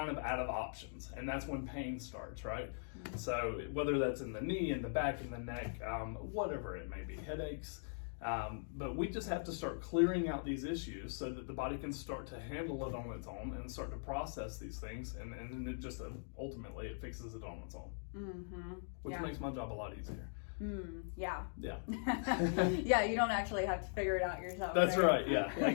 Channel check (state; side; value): silent; right; digital silence